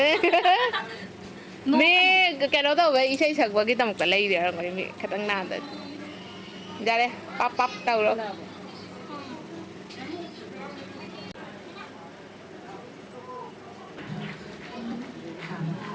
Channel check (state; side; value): identical; both; correlation 1.00